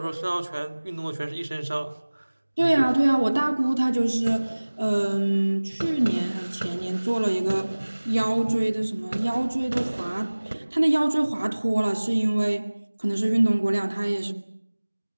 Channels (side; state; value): both; inverted; correlation -1.00